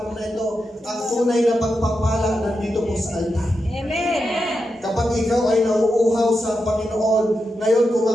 na ito, ang tunay na pagpapala nandito po sa altar. Amen. Kapag ikaw ay nauuhaw sa Panginoon, ngayon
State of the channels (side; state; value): both; normal; correlation 0.87